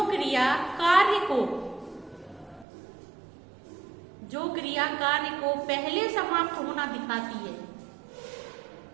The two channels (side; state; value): left; drops out; at 2.7 s